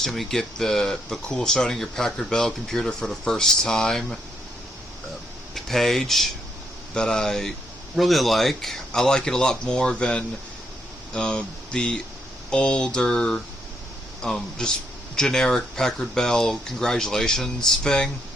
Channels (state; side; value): normal; both; correlation 0.76